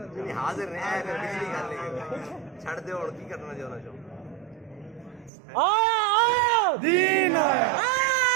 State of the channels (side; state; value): left; drops out; at 5.3 s